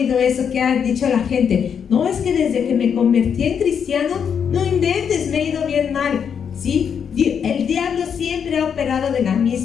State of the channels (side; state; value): right; quieter; 7.4 dB